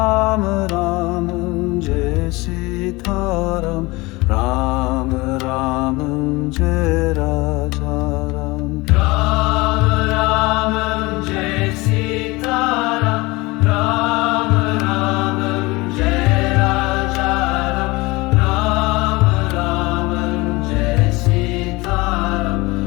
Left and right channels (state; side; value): quieter; right; 22.9 dB